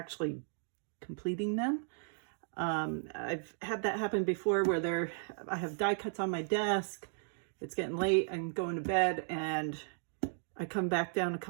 completing them. I've had that happen before where I have die cuts on my desk, it's getting late, I'm going to bed, and I come back down a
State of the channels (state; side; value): silent; left; digital silence